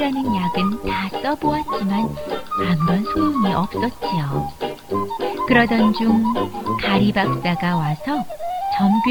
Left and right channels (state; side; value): identical; both; correlation 1.00